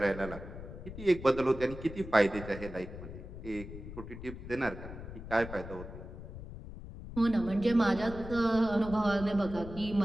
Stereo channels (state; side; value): noise; left; rumble, 11 dB below the sound